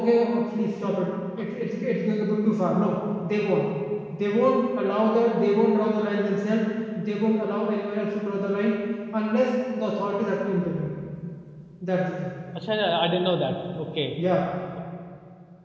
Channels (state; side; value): identical; both; correlation 1.00